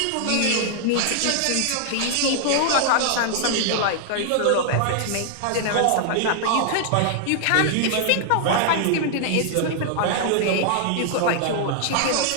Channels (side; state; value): both; different; correlation -0.01